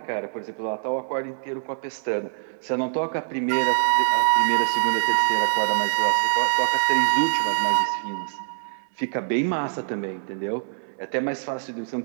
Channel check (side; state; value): left; silent; 62 dB below the other